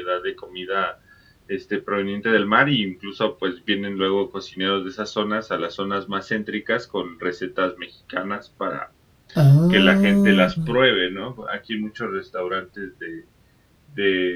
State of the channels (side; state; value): both; identical; correlation 1.00